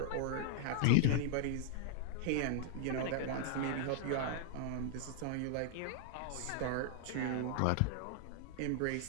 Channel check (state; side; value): different; both; correlation -0.01